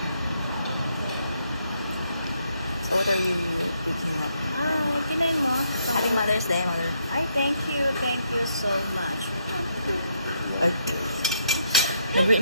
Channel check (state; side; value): inverted; both; correlation -0.75